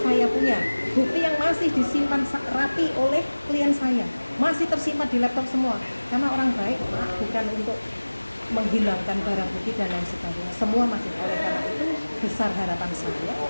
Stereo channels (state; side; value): inverted; both; correlation -1.00